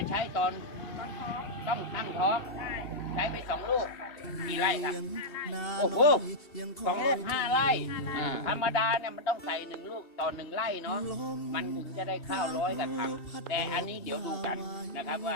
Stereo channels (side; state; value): right; late; 2.7 ms